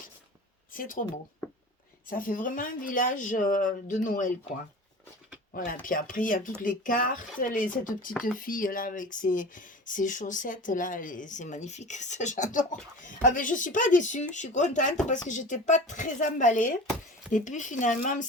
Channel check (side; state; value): both; normal; correlation 0.36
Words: c'est trop beau. Ça fait vraiment un village de Noël, quoi. Voilà, puis après, il y a toutes les cartes, cette petite fille là avec ses chaussettes là, c'est magnifique, ça j'adore. Ah mais je suis pas déçue, je suis contente parce que j'étais pas très emballée. Et puis finalement,